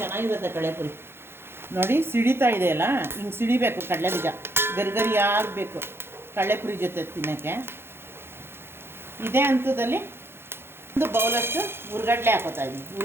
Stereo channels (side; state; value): left; late; 0.11 ms